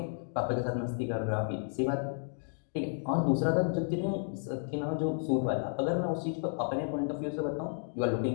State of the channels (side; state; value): right; silent; digital silence